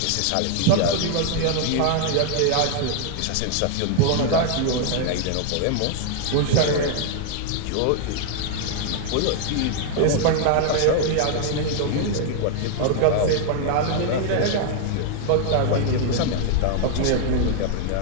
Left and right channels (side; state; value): both; different; correlation 0.00